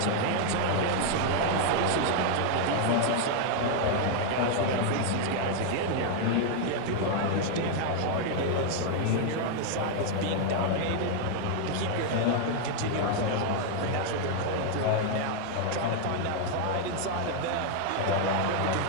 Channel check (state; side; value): different; both; correlation 0.00